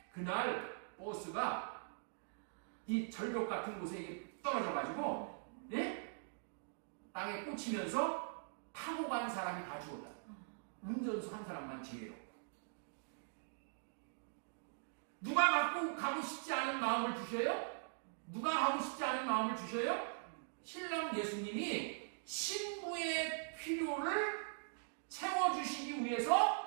그날 버스가 이 절벽 같은 곳에 떨어져가지고, 땅에 꽂히면서 타고 간 사람이 다 죽었다. 운전수 한 사람만 제외로. 누가 가고 싶지 않은 마음을 주셔요? 누가 가고 싶지 않은 마음을 주셔요? 신랑 예수님이 신부의 필요를 채워주시기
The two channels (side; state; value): left; silent; digital silence